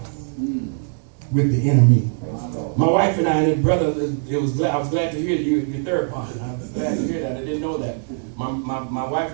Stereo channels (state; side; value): silent; left; 64 dB below the other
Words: with the enemy. My wife and I and his brother, I was glad to hear your therapist. I was glad to hear that. I didn't know that. My wife